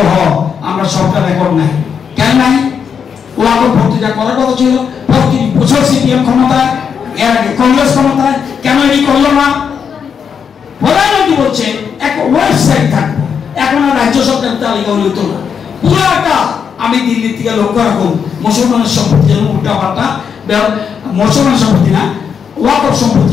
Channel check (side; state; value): right; quieter; 6.9 dB